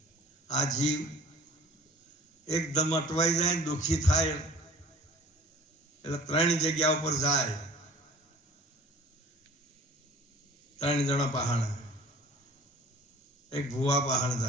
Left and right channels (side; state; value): both; normal; correlation 0.46